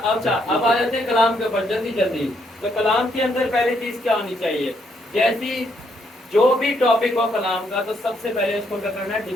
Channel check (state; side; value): normal; both; correlation 0.73